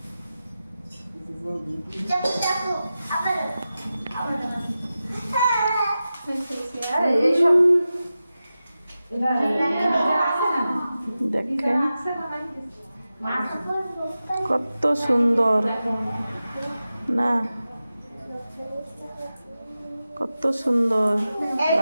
দেখেন কত সুন্দর না, কত সুন্দর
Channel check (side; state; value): both; inverted; correlation -0.93